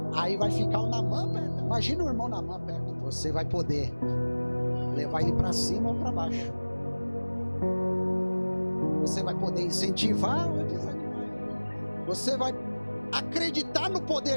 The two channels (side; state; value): both; inverted; correlation -1.00